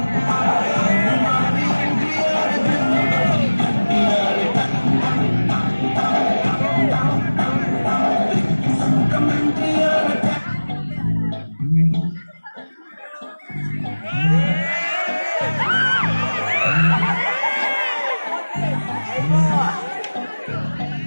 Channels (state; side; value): inverted; both; correlation -1.00